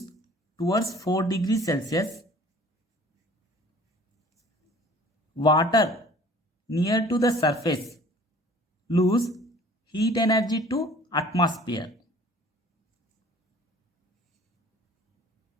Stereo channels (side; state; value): both; normal; correlation 0.51